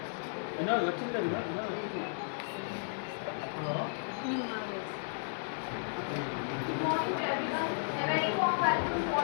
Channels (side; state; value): right; silent; digital silence